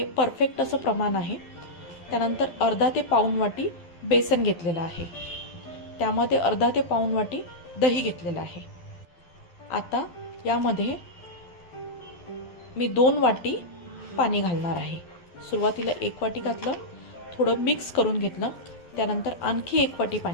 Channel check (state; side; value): late; right; 12 ms